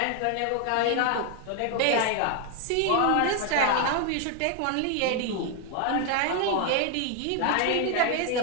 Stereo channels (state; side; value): different; both; correlation 0.00